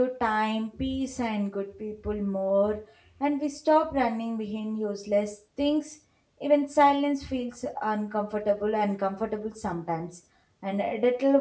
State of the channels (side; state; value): both; identical; correlation 1.00